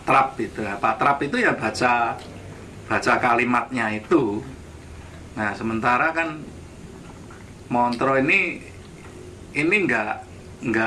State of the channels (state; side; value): identical; both; correlation 1.00